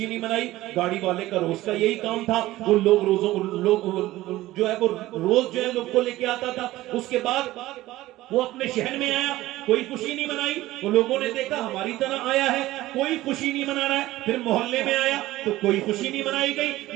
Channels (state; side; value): quieter; left; 16.7 dB